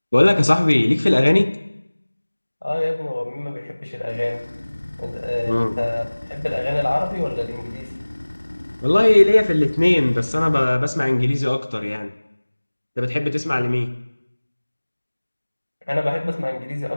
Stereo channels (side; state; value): both; inverted; correlation -1.00